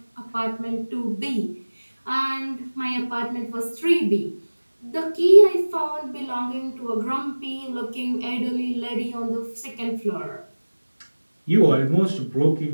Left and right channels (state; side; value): inverted; both; correlation -1.00